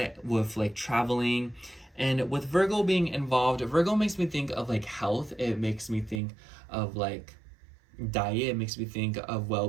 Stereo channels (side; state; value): left; drops out; at 6.2 s